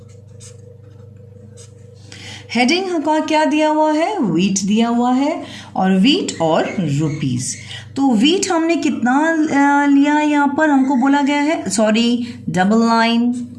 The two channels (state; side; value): identical; both; correlation 1.00